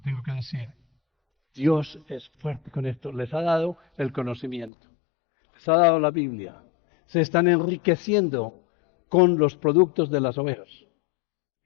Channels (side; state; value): right; drops out; at 4.7 s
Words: que decir. Dios es fuerte con esto. Les ha dado el conocimiento. Les ha dado la Biblia. Se están enriqueciendo con los productos de las ovejas.